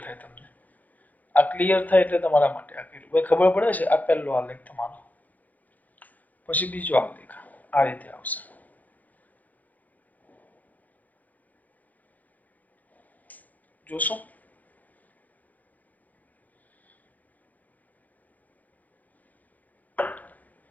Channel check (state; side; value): late; right; 0.081 ms